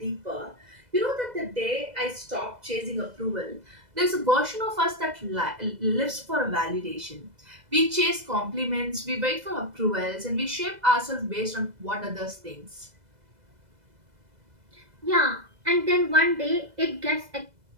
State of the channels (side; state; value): left; late; 2.0 ms